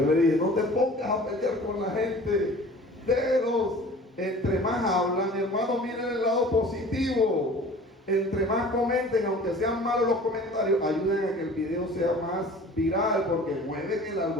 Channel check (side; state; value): both; normal; correlation 0.44